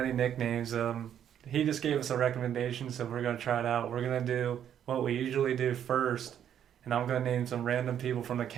nicknames. He just gave us a recommendation, so we're gonna try it out. We're gonna do what we usually do first, and I'm gonna name some random people from the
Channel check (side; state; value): left; quieter; 9.6 dB